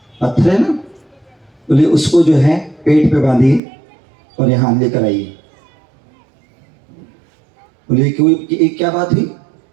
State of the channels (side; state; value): left; drops out; at 3.6 s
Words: पत्थर है ना, बोले उसको जो है पेट पे बांधिए और यहाँ लेकर आइए। बोले कोई क्या बात हुई,